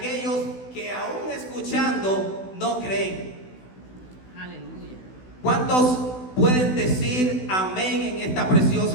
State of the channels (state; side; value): late; right; 16 ms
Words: que aún escuchando no creen. Aleluya. ¿Cuántos pueden decir amén en esta